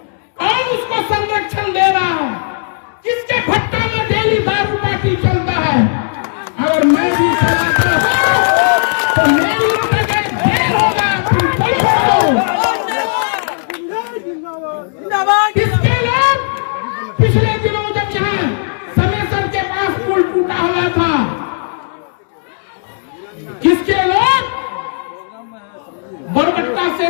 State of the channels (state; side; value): silent; right; digital silence